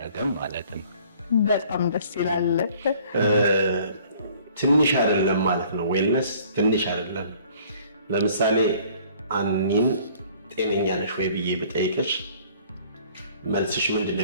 ማለት ነው። በጣም ደስ ይላል። ትንሽ አይደለም ማለት ነው። ዌልነስ ትንሽ አይደለም። ለምሳሌ አኒን ጤነኛ ነሽ ወይ ብዬ ብጠይቅሽ መልስሽ ምንድን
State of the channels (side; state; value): both; inverted; correlation -0.55